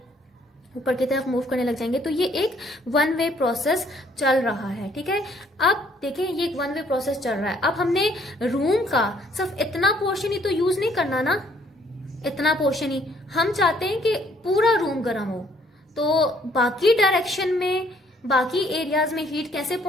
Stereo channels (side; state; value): both; normal; correlation 0.64